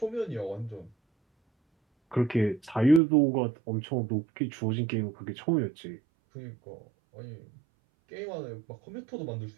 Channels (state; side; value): drops out; left; at 3.0 s